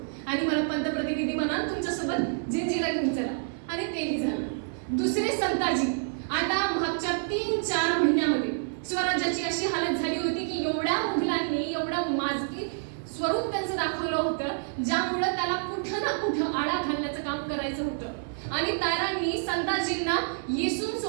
आणि मला पंतप्रतिनिधी बना, तुमच्यासोबत जिंजीला घेऊन चला. आणि तेही झालं. दुसरे संताजी आता मागच्या 3-4 महिन्यामध्ये स्वराज्याची अशी हालत झाली होती की एवढ्या मुघलांनी एवढं माजकी स्वरूप त्यांचं दाखवलं होतं ज्यामुळे त्याला कुठं ना कुठं आळा घालण्याचं काम करायचं होतं. आणि तारांनी संताजींना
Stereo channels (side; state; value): left; silent; digital silence